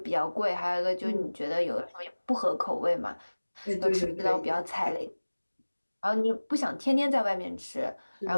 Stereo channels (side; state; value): both; inverted; correlation -1.00